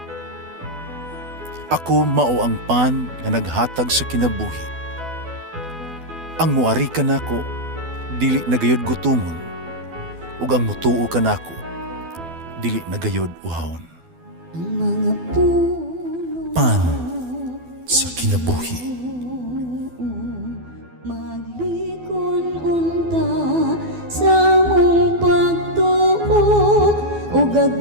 "Ako mao ang pan nga naghatag sa kinabuhi. Ang muari kanako dili nagayod gutomon, ug ang mutuo kanako dili nagayod uhawon." Ang mga puno Pan sa kinabuhi. maglikon unta sa mong pagtuo ug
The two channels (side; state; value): left; late; 12 ms